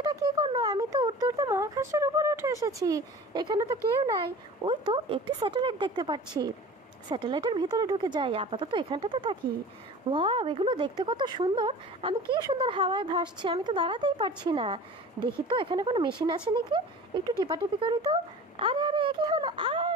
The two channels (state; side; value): normal; both; correlation 0.39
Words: এটা কি করলো? আমি তো উঠতে উঠতে মহাকাশের উপরে উঠে এসেছি। এখানে তো কেউ নাই। ওই তো একটি স্যাটেলাইট দেখতে পাচ্ছি। স্যাটেলাইটের ভিতরে ঢুকে যাই, আপাতত এখানটাতে থাকি। ওয়াও, এগুলো দেখতে কত সুন্দর! আমি কি সুন্দর হাওয়ায় ভাসছি, আমি তো দাঁড়াতেই পারছি না। দেখি তো এখানে কোনো মেশিন আছে নাকি, একটু টিপাটিপি করি তো। আরে আরে, এ কি হলো?